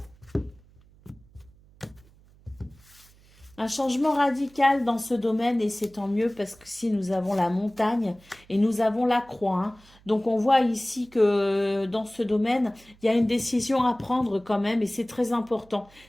Un changement radical dans ce domaine et c'est tant mieux parce que si nous avons la montagne et nous avons la croix. Hein. Donc on voit ici que dans ce domaine, il y a une décision à prendre quand même et c'est très important.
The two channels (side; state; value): right; noise; hum, 27 dB below the sound